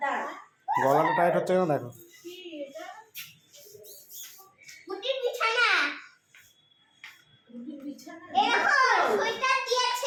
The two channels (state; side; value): identical; both; correlation 1.00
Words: দাঁড়া। গলাটা টাইট হচ্ছে কেন দেখো। বুটির বিছানা। বিছানা। এরকম সোয়েটার